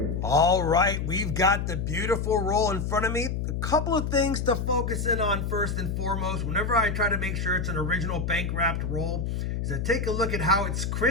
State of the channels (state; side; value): noise; left; hum, 2 dB below the sound